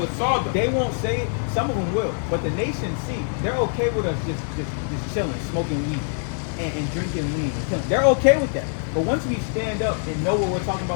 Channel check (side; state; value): right; silent; 60 dB below the other